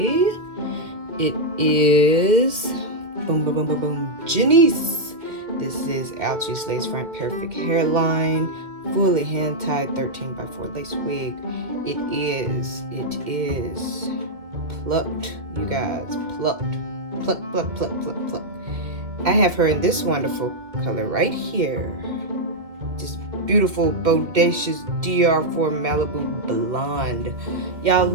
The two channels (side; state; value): left; late; 2.4 ms